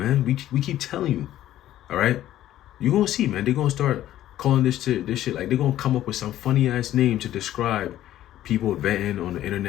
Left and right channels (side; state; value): right; quieter; 13.1 dB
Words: We keep telling you. All right? You're going to see, man. They're going to start calling this shit. Like, they're going to come up with some funny ass name to describe people venting on the